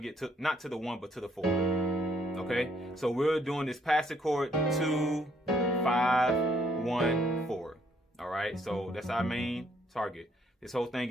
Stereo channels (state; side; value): normal; both; correlation 0.68